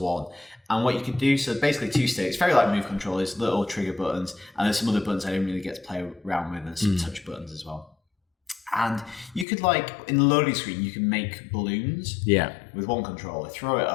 And what you could do, so basically 2 sticks, very like Move controllers, little trigger buttons, and there's some other buttons I didn't really get to play around with, and some touch buttons as well. And you could in the loading screen, you can make balloons with one controller, throw it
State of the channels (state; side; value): drops out; right; at 9.5 s